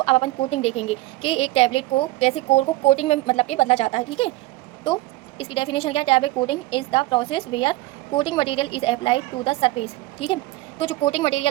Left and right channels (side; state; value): left; quieter; 18.5 dB